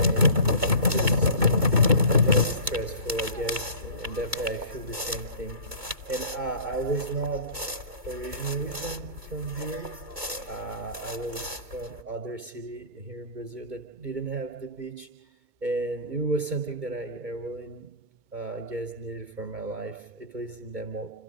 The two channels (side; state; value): left; late; 2.2 ms